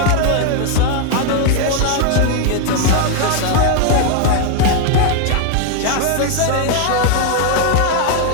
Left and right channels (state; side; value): different; both; correlation 0.01